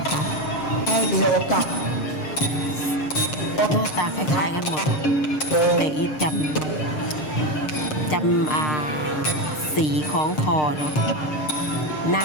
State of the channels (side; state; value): right; late; 6.6 ms